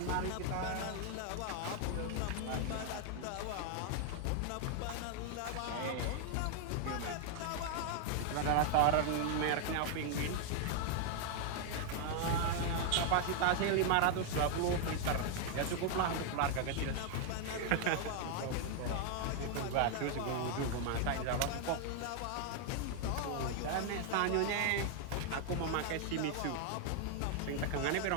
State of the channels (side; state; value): both; different; correlation 0.00